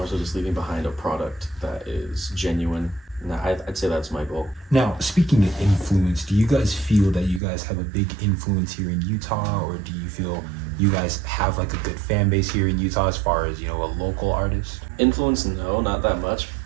so just leaving behind a product that is genuine. And I'd say that's my goal. Now, speaking of influence, do you guys feel that you guys have a big influence here in Utah, or do you feel you guys have like a good fan base here in Utah as far as, you know, a local artist? Influence, no, not that much,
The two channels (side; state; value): left; drops out; at 7.4 s